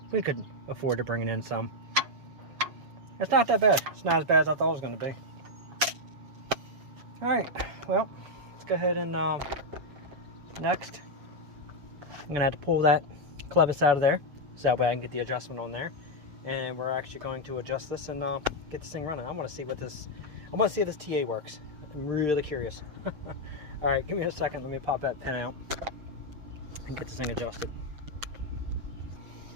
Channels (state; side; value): late; left; 7.2 ms